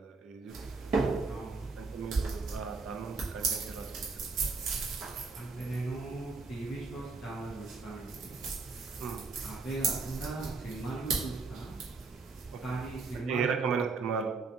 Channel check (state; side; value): quieter; left; 4.2 dB